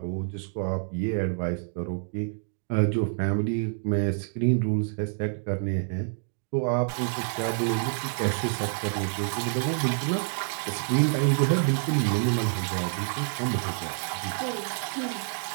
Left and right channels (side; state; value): left; silent; 60 dB below the other